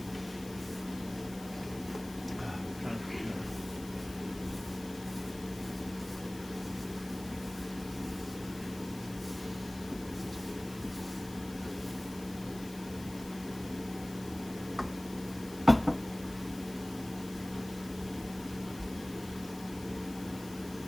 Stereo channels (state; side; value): noise; left; hiss, 16 dB below the sound